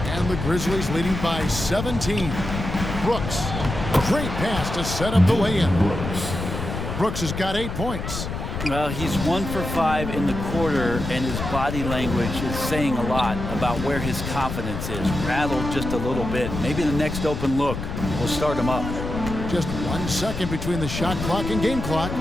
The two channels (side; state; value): left; noise; rumble, 5 dB below the sound